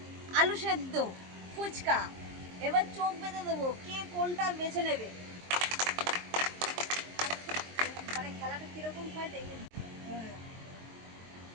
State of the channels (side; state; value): left; late; 23 ms